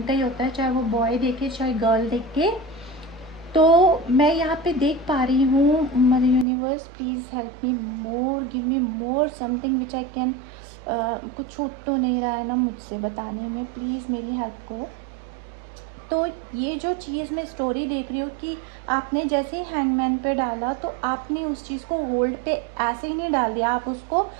ही होता है, चाहे वो बॉय देखे चाहे गर्ल देखे। तो मैं यहाँ पे देख पा रही हूँ, mother universe please help me more, give me more something which I can कुछ छूट तो नहीं रहा है ना मुझसे बताने में, प्लीज़ मेरी हेल्प करो। तो ये जो चीज़ मैं स्टोरी देख रही हूँ कि आपने जैसे ही हैंगमैन पे डाला तो आपने उस चीज़ को होल्ड पे ऐसे ही नहीं डाल दिया, आप उसको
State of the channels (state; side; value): drops out; left; at 6.5 s